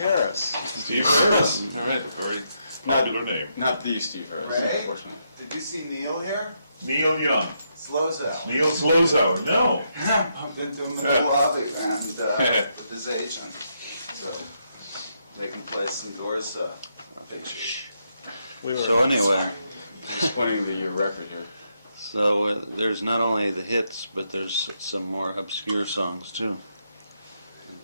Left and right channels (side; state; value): both; inverted; correlation -0.79